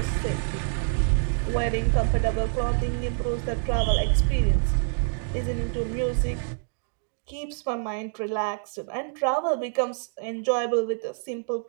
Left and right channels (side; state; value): left; silent; digital silence